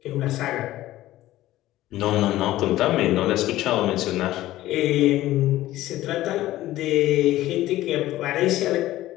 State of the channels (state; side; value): quieter; right; 15.4 dB